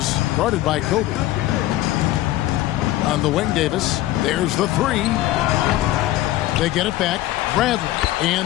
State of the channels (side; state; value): right; quieter; 15.5 dB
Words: guarded by Kobe. On the wing, Davis. There's the 3. They get it back. Bradley.